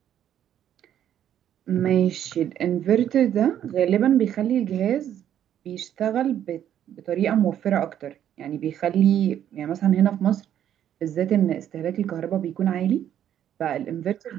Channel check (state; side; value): quieter; left; 10.4 dB